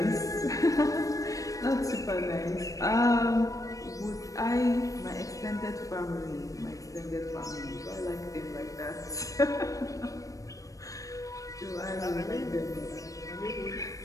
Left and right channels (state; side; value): late; right; 0.16 ms